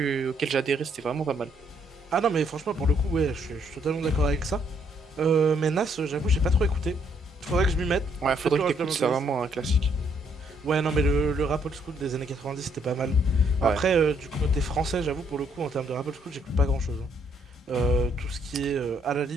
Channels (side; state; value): both; normal; correlation 0.70